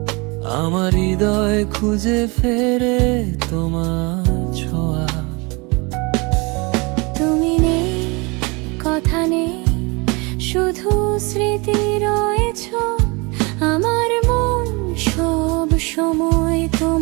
আমার হৃদয় খুঁজে ফেরে তোমার ছোঁয়া। তুমি নেই, কথা নেই, শুধু স্মৃতি রয়েছ। আমার মন সব সময়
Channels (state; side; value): quieter; left; 27.8 dB